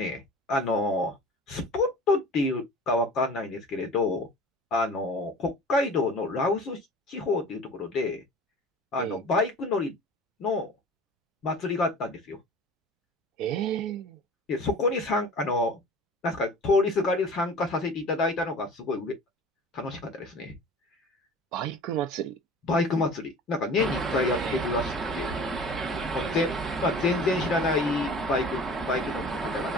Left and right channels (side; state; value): both; normal; correlation 0.41